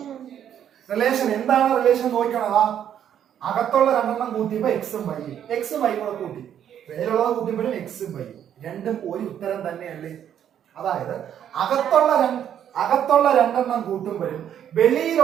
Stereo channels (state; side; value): quieter; left; 9.7 dB